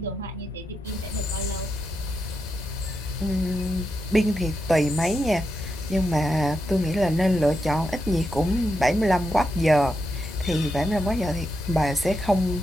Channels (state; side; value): normal; both; correlation 0.85